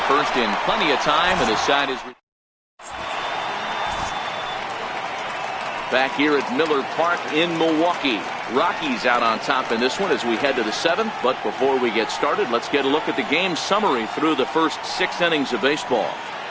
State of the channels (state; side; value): identical; both; correlation 1.00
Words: first in plenty of time, and the side is back here at Miller Park in Milwaukee. Rockies out on top in this one as we head to the 7th. But before we get started, let's get a look at the game summary through the first 6 innings of baseball.